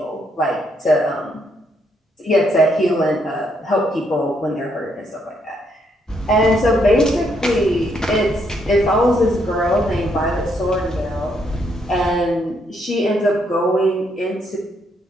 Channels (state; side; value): normal; both; correlation 0.74